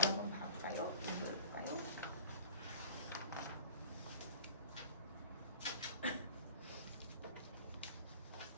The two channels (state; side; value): inverted; both; correlation -0.39